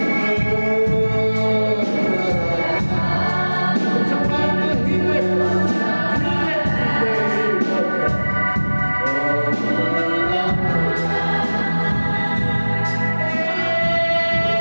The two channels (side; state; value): both; inverted; correlation -1.00